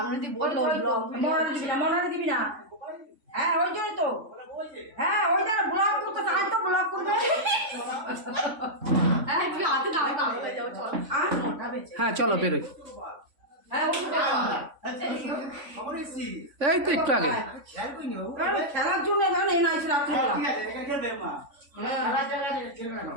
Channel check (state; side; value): late; left; 3.5 ms